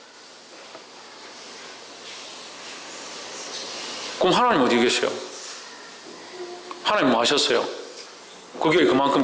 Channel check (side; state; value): both; identical; correlation 1.00